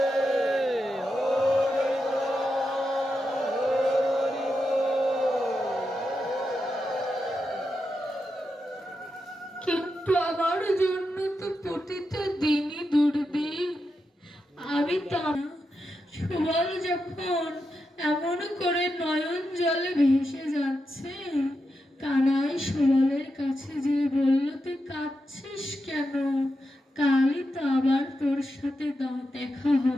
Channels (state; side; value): normal; both; correlation 0.87